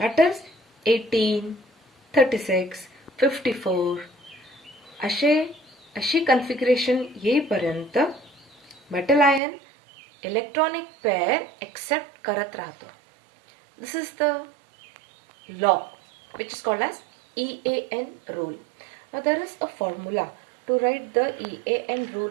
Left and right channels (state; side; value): drops out; left; at 9.4 s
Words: is 18, 36, 54 अशी configuration येईपर्यंत metal ion electronic pair accept करत राहतो. This is the law which is called as EAN rule. Now there is a formula to write the EAN